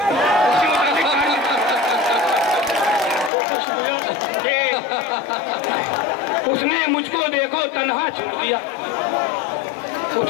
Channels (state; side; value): drops out; right; at 3.3 s